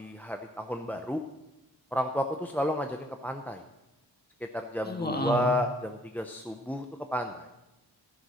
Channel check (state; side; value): normal; both; correlation 0.64